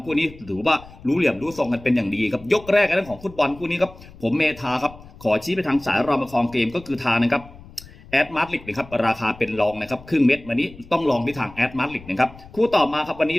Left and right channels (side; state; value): left; noise; rumble, 20 dB below the sound